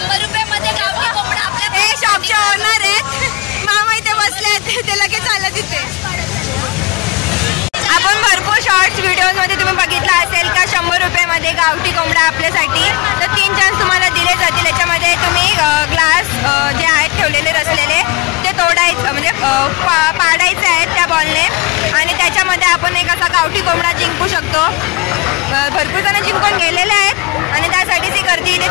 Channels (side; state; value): right; quieter; 23.6 dB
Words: रुपयामध्ये गावठी कोंबडा आपल्या. हे शॉपचे ओनर आहेत. मामा इथे बसले ते लगेच आलं तिथे. आपण भरपूर शॉर्ट्स व्हिडिओज मध्ये तुम्ही बघितलं असेल का 100 रुपयामध्ये गावठी कोंबडा आपल्यासाठी. तर 3 चान्स तुम्हाला दिले जातील. याच्यामध्ये तुम्ही ग्लास जे आहेत ठेवलेले रचलेले ते तोडायचं म्हणजे पाडायचे आहेत त्या बॉलने. आणि त्याच्यामध्ये आपण एक असा गावठी कोंबडा जिंकू शकतो. भरपूर जण जिंकून गेलेले आहेत आणि त्यासाठीच ही गर्दी इथे